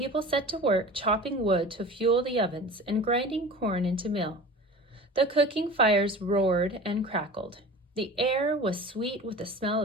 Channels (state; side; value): normal; both; correlation 0.37